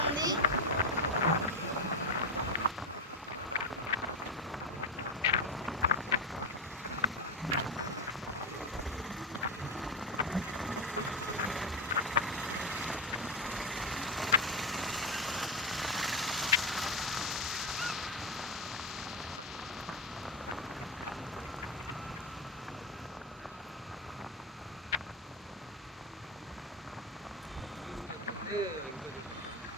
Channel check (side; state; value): both; normal; correlation 0.12